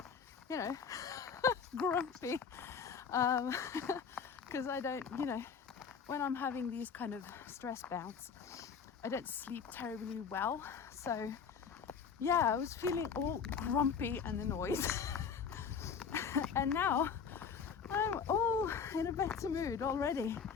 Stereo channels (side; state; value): right; quieter; 6.4 dB